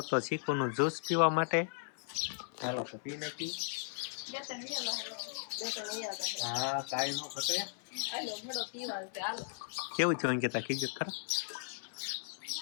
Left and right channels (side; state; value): right; silent; 53 dB below the other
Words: તો ચીકુનું જ્યુસ પીવા માટે ચાલો તો પી નાખી હા કાઈ નો ઘટે હાલો ભડો પીવા છે હાલો કેવું છે અંકિતા કીધું ખરા